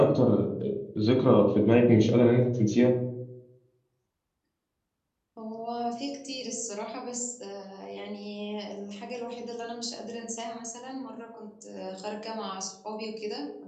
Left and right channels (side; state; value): both; identical; correlation 1.00